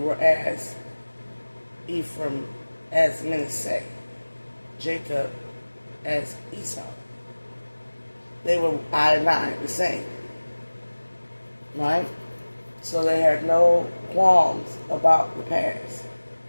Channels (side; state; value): both; inverted; correlation -1.00